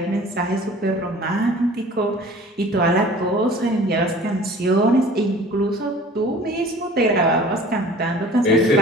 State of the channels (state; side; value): normal; both; correlation 0.46